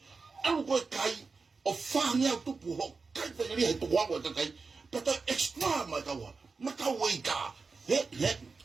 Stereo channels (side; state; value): left; quieter; 4.4 dB